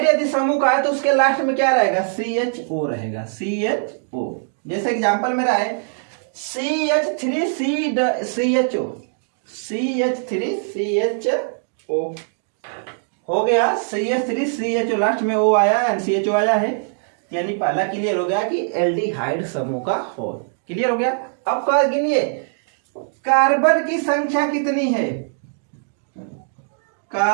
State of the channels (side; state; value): left; silent; digital silence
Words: यदि समूह का है तो उसके लास्ट में क्या रहेगा, CHO रहेगा, CHO। जैसे एग्जांपल मेरा है CH3CHO, CH3CHO हो गया, CH3CHO लास्ट में O आया एंड CHO आया है, यानी पहला क्लियर हो गया कि एल्डिहाइड समूह का हो। क्लियर हो गया। अब क्या गिनिए, कार्बन की संख्या कितनी है,